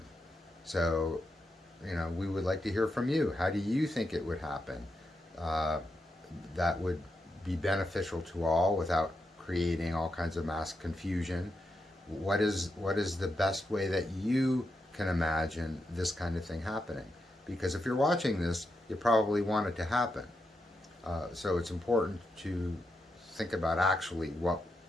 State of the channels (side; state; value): both; normal; correlation 0.85